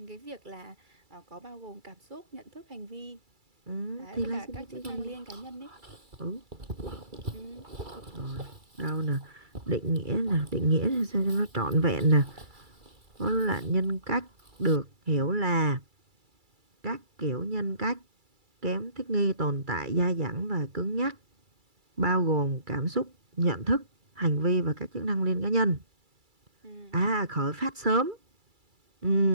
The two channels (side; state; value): left; late; 2.3 ms